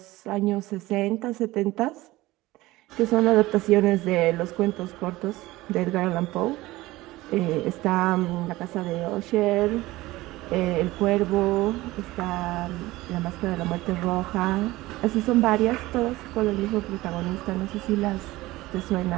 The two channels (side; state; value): left; quieter; 18.6 dB